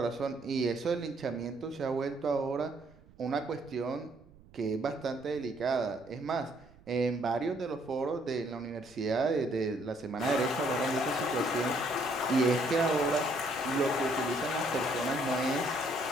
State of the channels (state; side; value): noise; right; rumble, 25 dB below the sound